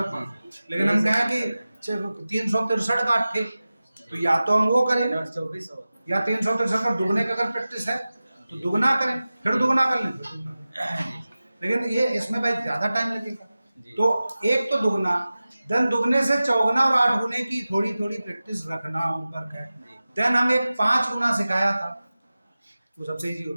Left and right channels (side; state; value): both; inverted; correlation -0.96